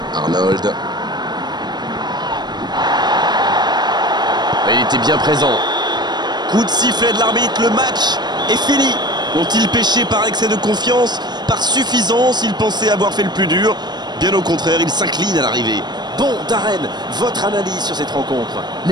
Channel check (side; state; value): left; late; 0.21 ms